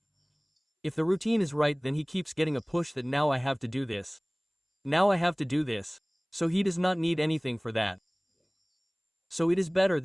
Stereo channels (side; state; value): both; identical; correlation 1.00